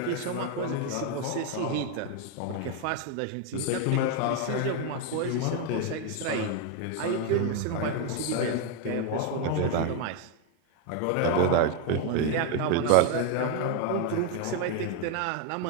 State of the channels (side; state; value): both; different; correlation 0.01